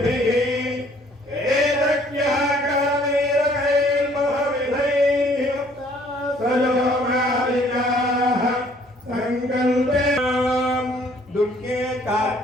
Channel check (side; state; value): both; normal; correlation 0.60